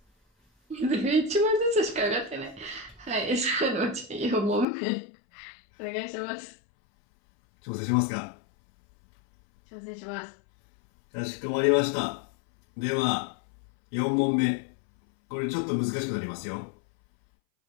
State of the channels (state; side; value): drops out; right; at 4.7 s